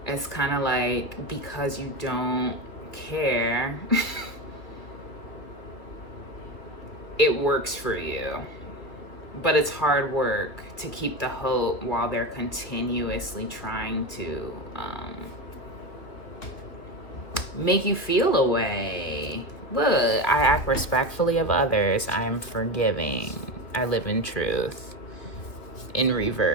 it's kind of like, because you don't care, it works for you. But it's hard work to keep the hope while they're continuously trying to make you feel a way. Look, I act respectfully of others. I am forgiving. I live in truth. In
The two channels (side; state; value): right; late; 2.6 ms